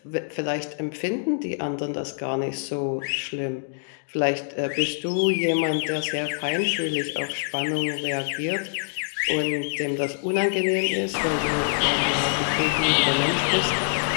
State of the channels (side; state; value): right; silent; digital silence